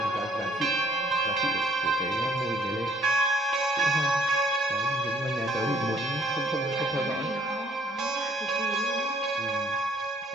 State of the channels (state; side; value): normal; both; correlation 0.64